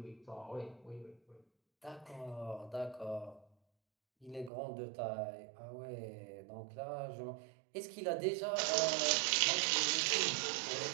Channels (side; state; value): left; drops out; at 4.5 s